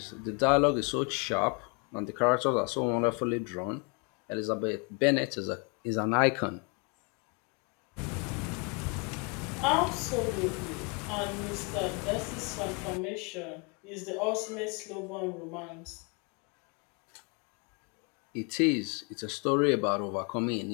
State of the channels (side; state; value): right; quieter; 33.5 dB